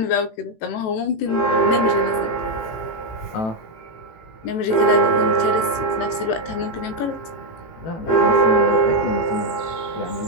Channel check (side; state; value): right; late; 18 ms